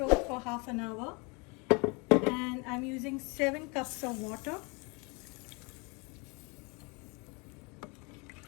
for half an hour, and I'm using 7 cups of water.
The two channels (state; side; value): quieter; right; 30.0 dB